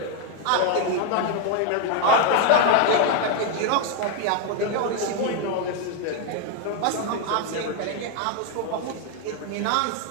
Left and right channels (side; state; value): both; different; correlation 0.01